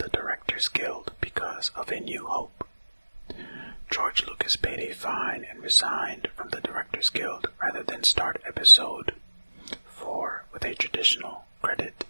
Directors Guild because of A New Hope. George Lucas paid a fine and resigned from the Directors Guild rather than start episode 4 with a traditional credit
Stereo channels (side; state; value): both; inverted; correlation -1.00